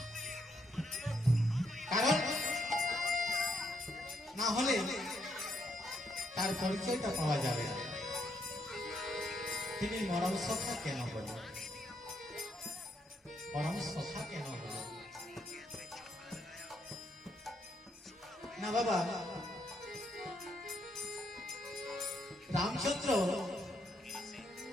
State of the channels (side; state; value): both; normal; correlation 0.75